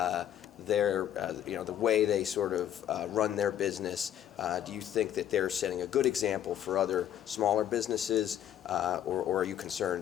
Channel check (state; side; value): quieter; right; 10.8 dB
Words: their, the way they sort of run their business? Do you think that they're setting a good example for other smaller businesses, or are you